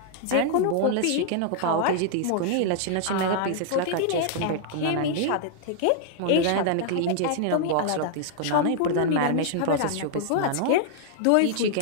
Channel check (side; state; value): both; different; correlation -0.01